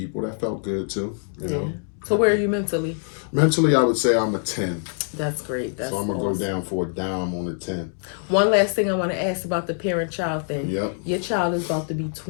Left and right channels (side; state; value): right; silent; 60 dB below the other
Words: that felt good too. You know. So where are you mentally? Mentally, I would say I'm a 10. That's great. So I'm going to go down for a dime on a 10. One last thing I want to ask about the parent-child thing. Yep. Your child is about to be